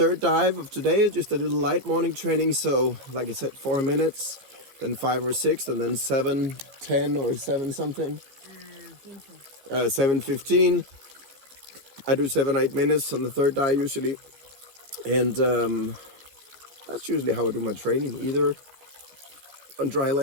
dive of today, just a little light morning training. So like I said, 4 minutes, then 5 or 6, and then 7, 10 or 7 something. 7:15. I do 7-8 minutes on the third dive usually. And that's usually how I do my training, either on dry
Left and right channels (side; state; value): left; late; 14 ms